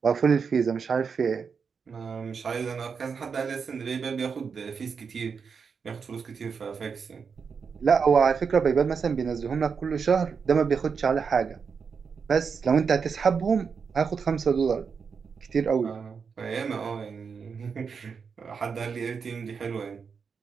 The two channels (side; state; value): left; quieter; 5.9 dB